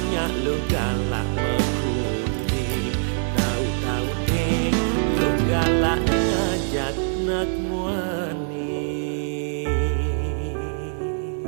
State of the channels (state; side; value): silent; left; digital silence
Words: lo galak mekuni, tahu-tahu nih lo galak ngajak nak muani.